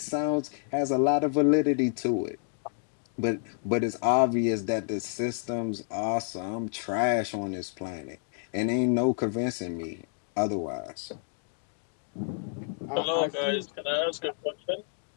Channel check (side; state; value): right; silent; 58 dB below the other